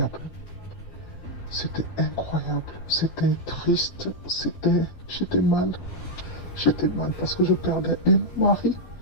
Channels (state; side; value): late; right; 12 ms